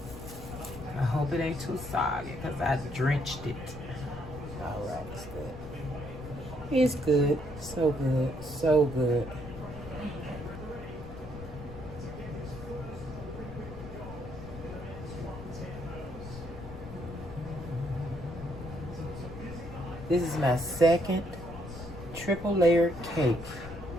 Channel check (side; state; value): left; noise; rumble, 12 dB below the sound